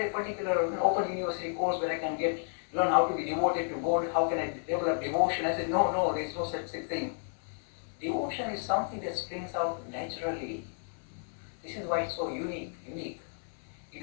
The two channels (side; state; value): right; silent; 56 dB below the other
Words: a particular open university course where I can learn how to be devoted to God? How can I develop devotion? I said, no, there is no such thing. Devotion is something that springs out naturally. This is why it's so unique. You